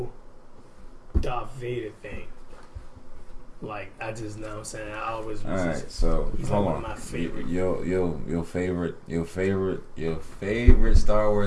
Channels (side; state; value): both; identical; correlation 1.00